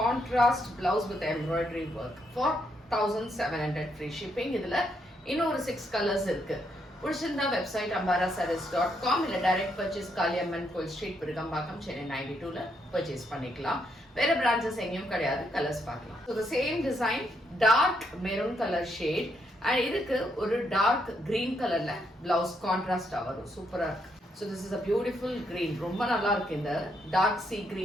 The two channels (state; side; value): normal; both; correlation 0.76